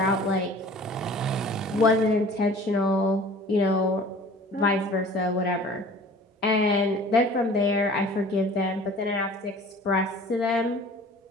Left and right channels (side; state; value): both; normal; correlation 0.46